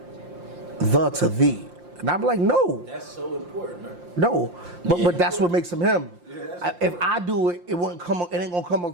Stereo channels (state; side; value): late; left; 5.7 ms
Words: to thee. And I'm like, no. That's so important, man. No. But that's what makes him him. If I do it, it ain't gonna come